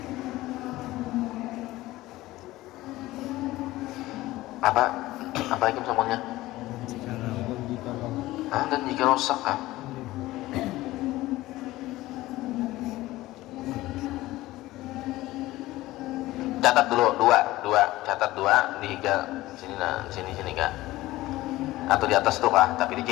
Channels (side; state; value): right; quieter; 17.4 dB